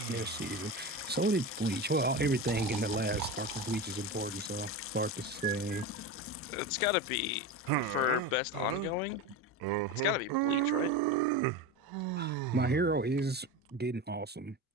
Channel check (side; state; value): both; normal; correlation 0.23